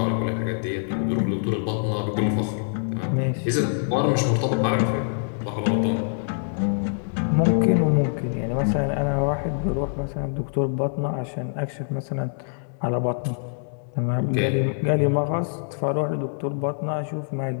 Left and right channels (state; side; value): silent; right; digital silence